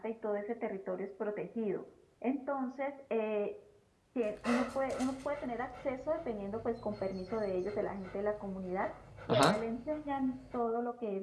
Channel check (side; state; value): both; identical; correlation 1.00